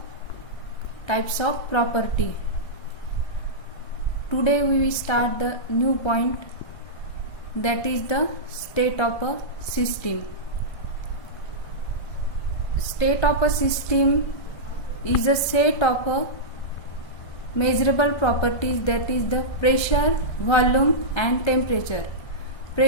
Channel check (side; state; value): right; late; 1.6 ms